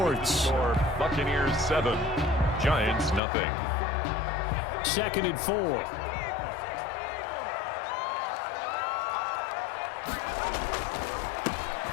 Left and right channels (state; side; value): drops out; right; at 3.2 s